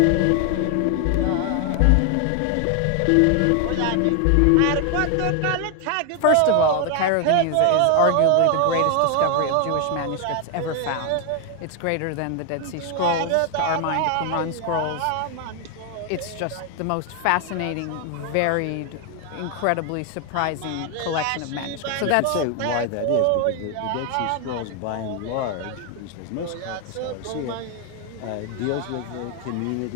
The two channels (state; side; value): different; both; correlation 0.00